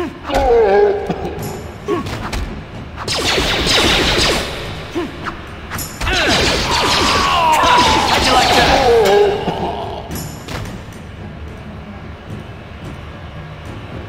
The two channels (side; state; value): both; identical; correlation 1.00